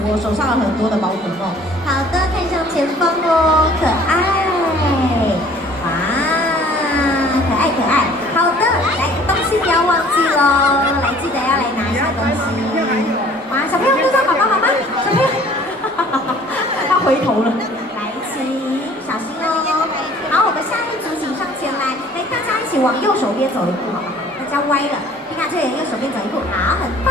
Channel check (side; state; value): both; normal; correlation 0.53